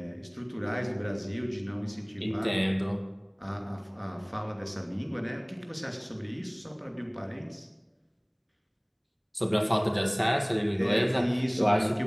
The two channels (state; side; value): identical; both; correlation 1.00